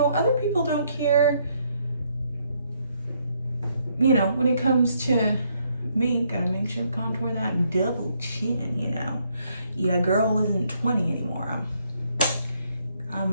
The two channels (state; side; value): inverted; both; correlation -0.72